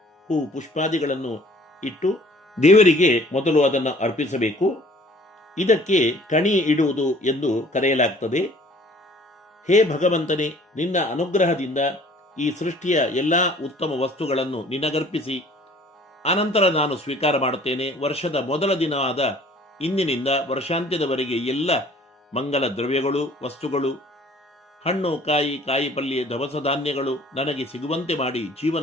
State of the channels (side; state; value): both; normal; correlation 0.53